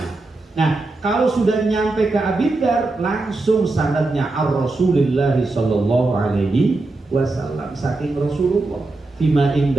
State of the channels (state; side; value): quieter; left; 3.2 dB